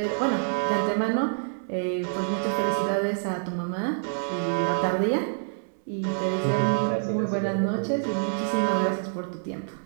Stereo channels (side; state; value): left; silent; 60 dB below the other